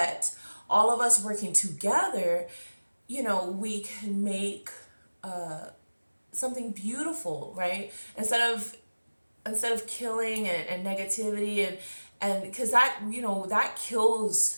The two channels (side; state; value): both; inverted; correlation -1.00